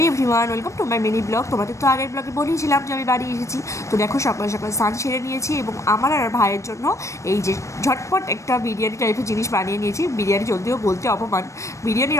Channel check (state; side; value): late; right; 0.15 ms